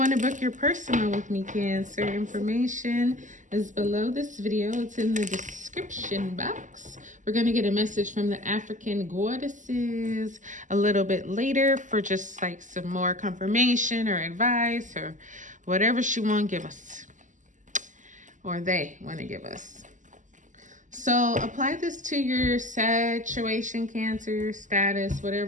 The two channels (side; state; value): left; late; 0.37 ms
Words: to book your personal with me, Cancer, information is below this video. It's in the description box. We're going to get a message from the African goddesses a little bit later for just like some more confirmation or advice or whatever she want to give us, or they want to give us. So apply this to your situation, Cancer, status,